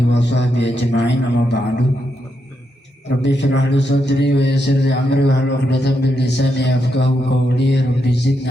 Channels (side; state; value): both; normal; correlation 0.82